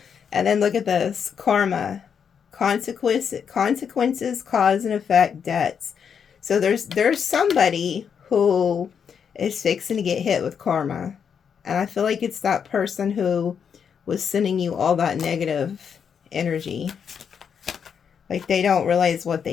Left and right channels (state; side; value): quieter; right; 7.2 dB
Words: And then look at this. Karma. Consequences, cause and effect, debts. So there's somebody who is fixing to get hit with karma. And I feel like it's that person who was sending you all that negative energy. Like they don't realize what